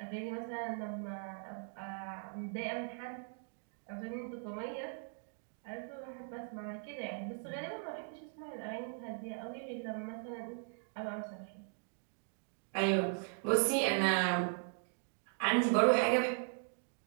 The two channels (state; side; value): silent; left; 52 dB below the other